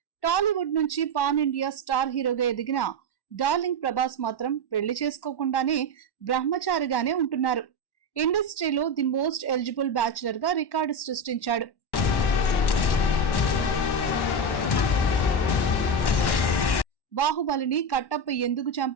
టాలీవుడ్ నుంచి పాన్ ఇండియా స్టార్ హీరోగా ఎదిగిన డార్లింగ్ ప్రభాస్ మాత్రం పెళ్లి చేసుకోకుండానే బ్రహ్మచారిగానే ఉంటున్నారు. ఇండస్ట్రీలో ది మోస్ట్ ఎలిజిబుల్ బ్యాచులర్ గా రికార్డు సృష్టించాడు. బాహుబలిని కట్టప్ప ఎందుకు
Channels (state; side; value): late; right; 1.1 ms